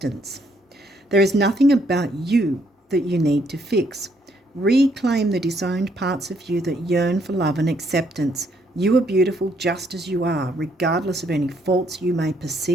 There is nothing about you that you need to fix. Reclaim the disowned parts of you that yearn for love and acceptance. You are beautiful just as you are, regardless of any faults you may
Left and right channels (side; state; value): both; normal; correlation 0.70